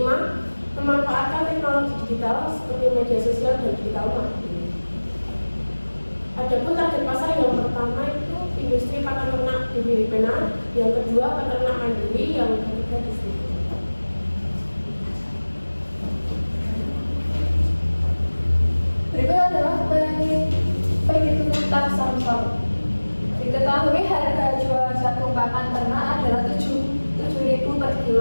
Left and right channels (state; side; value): inverted; both; correlation -1.00